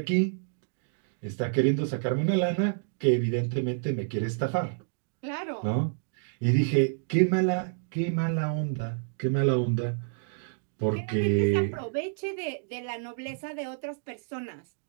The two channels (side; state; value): left; silent; digital silence